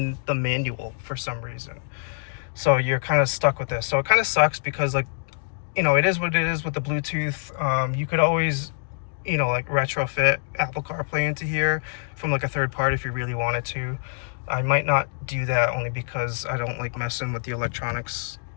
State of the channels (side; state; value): right; silent; digital silence